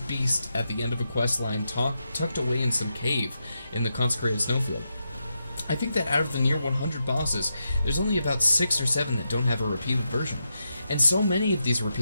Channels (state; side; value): inverted; both; correlation -0.86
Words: at the end of a questline tucked away in some cave in the consecrated snowfield? I think that out of the near 100 bosses, there's only about 6 or 7 that don't have a repeated version. And so many of these